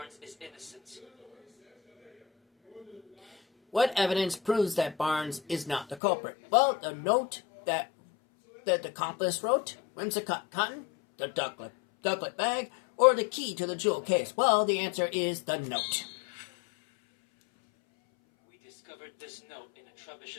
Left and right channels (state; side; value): drops out; right; at 6.0 s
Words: is innocent. What evidence proves that Barnes is not the culprit? Well, the note that the accomplice wrote, whimsicott cotton, the ducklet bag, or the key to the jewel case. Well, the answer is the note. We discovered this note in a